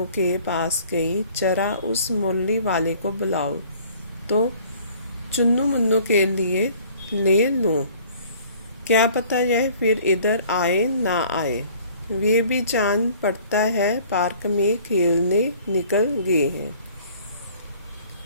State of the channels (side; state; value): both; inverted; correlation -0.53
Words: के पास गई। जरा उस मुरली वाले को बुलाओ तो चुन्नू मुन्नू के लिए ले लूं। क्या पता यह फिर इधर आए ना आए। वे भी जान पड़ता है पार्क में खेलने निकल गए हैं।